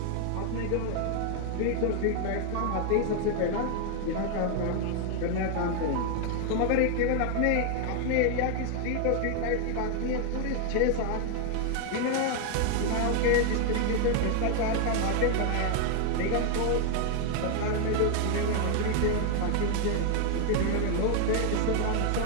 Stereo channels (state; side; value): different; both; correlation 0.00